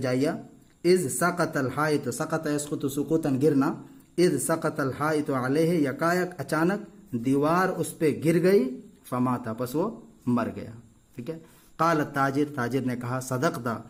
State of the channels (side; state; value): both; identical; correlation 1.00